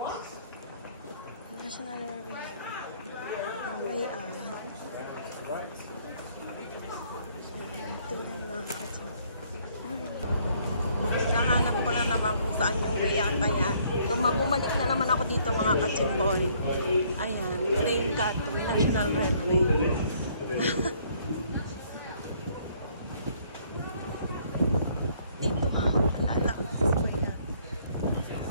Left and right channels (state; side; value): inverted; both; correlation -0.64